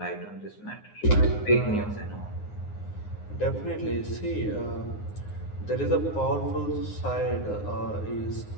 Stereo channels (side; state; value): right; late; 9.6 ms